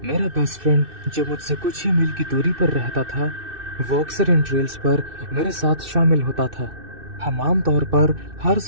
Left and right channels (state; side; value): late; left; 2.6 ms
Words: मेरा बेस्ट फ्रेंड जो मुझसे कुछ ही मील की दूरी पर रहता था, वो अक्सर इन ट्रेल्स पर मेरे साथ शामिल होता था। हम आमतौर पर हर